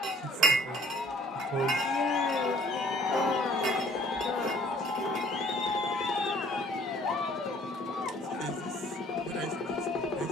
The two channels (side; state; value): both; normal; correlation 0.56